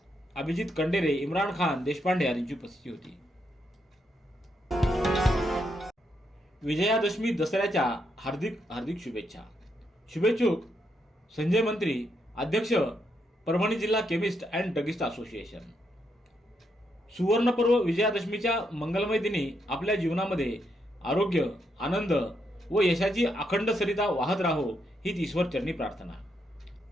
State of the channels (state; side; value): normal; both; correlation 0.79